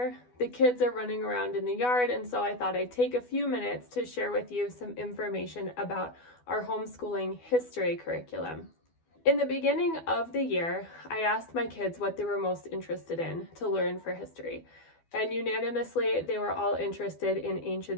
The kids are running around in the yard, and so I thought I'd take a few minutes to share with you some information about our homeschooling history curriculum. In the beginning of the year, I asked my kids what they were most interested in to learn for history. And unanimously, they were all interested in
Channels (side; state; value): right; late; 12 ms